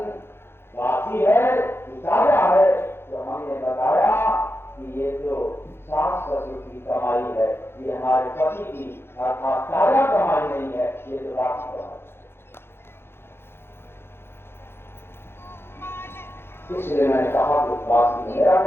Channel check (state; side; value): late; right; 0.11 ms